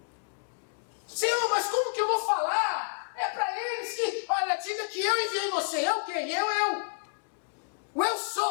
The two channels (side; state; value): right; silent; digital silence